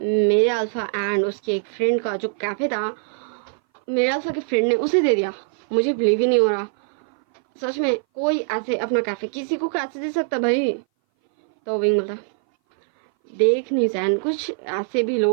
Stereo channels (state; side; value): silent; left; 60 dB below the other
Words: अल्फा एंड उसके एक फ्रेंड का जो कैफ़े था मेरे अल्फा के फ्रेंड ने उसे दे दिया, मुझे बिलीव ही नहीं हो रहा, सच में कोई ऐसे अपना कैफ़े किसी को कैसे दे सकता भाई। तो विंग बोलता देख निशान कुछ ऐसे भी